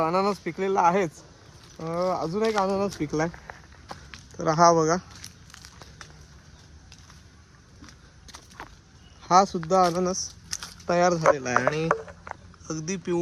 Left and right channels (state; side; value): identical; both; correlation 1.00